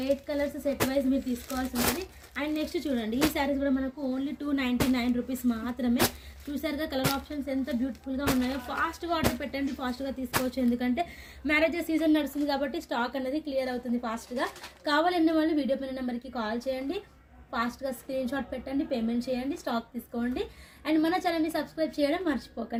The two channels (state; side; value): identical; both; correlation 1.00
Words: 8 కలర్స్ సెట్ వైజ్ మీరు తీసుకోవాల్సి ఉంటుంది. అండ్ నెక్స్ట్ చూడండి, ఈ శారీస్ కూడా మనకు ఓన్లీ 299 రూపీస్ మాత్రమే. చూసారుగా కలర్ ఆప్షన్స్ ఎంత బ్యూటిఫుల్గా ఉన్నాయో. ఫాస్ట్గా ఆర్డర్ పెట్టండి, ఫాస్ట్గా తీసుకోవచ్చు. ఎందుకంటే మ్యారేజెస్ సీజన్ నడుస్తుంది కాబట్టి స్టాక్ అనేది క్లియర్ అవుతుంది ఫాస్ట్గా. కావాలన్న వాళ్ళు వీడియో పైన నెంబర్కి కాల్ చేయండి, ఫాస్ట్గా స్క్రీన్ షాట్ పెట్టండి, పేమెంట్ చేయండి, స్టాక్ తీసుకోండి. అండ్ మన ఛానల్ని సబ్స్క్రైబ్ చేయడం